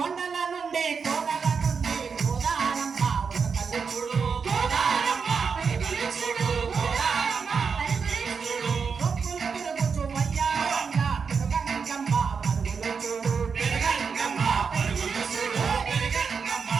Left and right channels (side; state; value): left; quieter; 5.7 dB